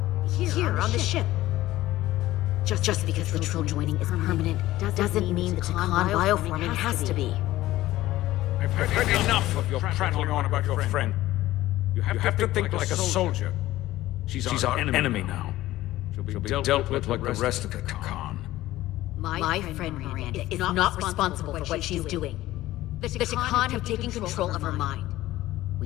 here on the ship. Just because control joining is permanent doesn't mean the Takan bioforming has to be. I've heard enough of your prattling on about your friend. You have to think like a soldier. She's our enemy now. She'll be dealt with like the rest of the Takan. My friend Miranda is not responsible for what she's doing. The Takan have taken control of her mind. We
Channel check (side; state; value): right; quieter; 15.9 dB